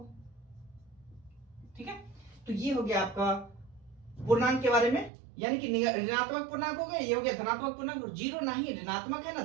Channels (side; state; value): left; drops out; at 5.1 s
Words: ठीक है। तो ये हो गया आपका पूर्णांक के बारे में, यानी कि ऋणात्मक पूर्णांक हो गया, ये हो गया धनात्मक पूर्णांक। जीरो ना ही ऋणात्मक है ना